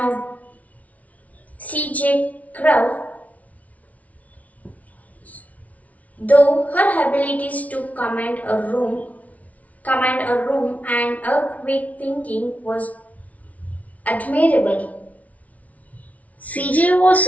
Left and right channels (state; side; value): late; right; 0.069 ms